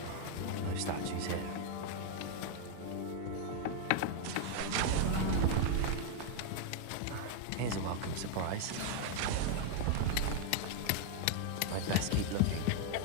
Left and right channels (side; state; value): both; different; correlation 0.00